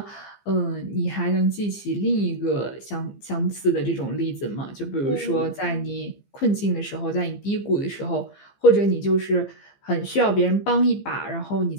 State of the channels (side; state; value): right; late; 15 ms